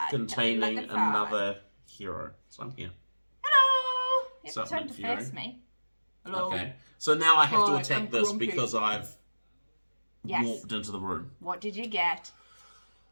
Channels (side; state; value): both; inverted; correlation -1.00